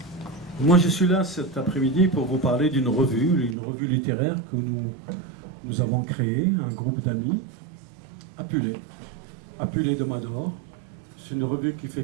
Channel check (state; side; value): drops out; left; at 3.6 s